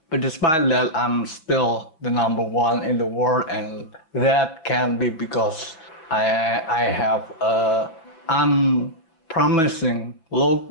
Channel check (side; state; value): right; late; 6.3 ms